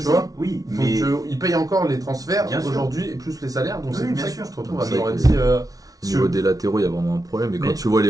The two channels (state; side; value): late; left; 0.18 ms